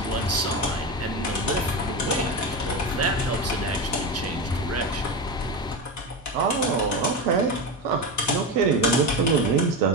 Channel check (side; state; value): both; normal; correlation 0.19